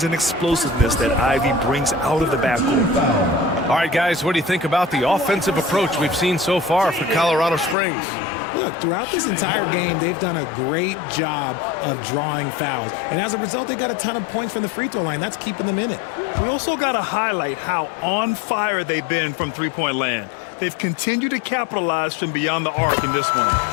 and explosiveness that Ivy brings out of the backcourt. All right, guys, what do you think about the offensive approach we've seen so far for Colorado Springs? Look, throughout this entire game, they've done a great job of drawing fouls. And as a result, they got a ton of points from the free throw line. That's keeping them in it. We also got to highlight how on fire they've been from three-point land. They've continued to capitalize from beyond the arc in this one.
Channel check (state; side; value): drops out; right; at 7.8 s